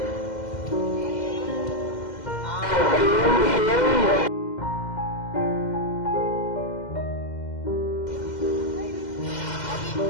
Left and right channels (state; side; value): late; right; 2.1 ms